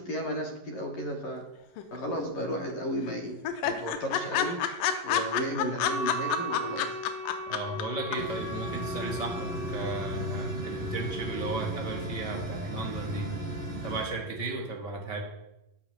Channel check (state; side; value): late; right; 11 ms